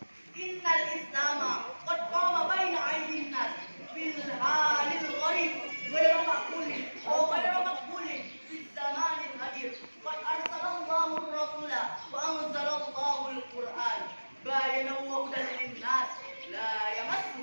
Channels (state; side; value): inverted; both; correlation -1.00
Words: إن الإسلام قد قام بين أيدي الناس بالحال الغريب غير مقبول وغير مقبول في الزمان الحديث قد أرسل الله الرسول وأنزل الله القرآن بينا وهدى للناس لا يمسه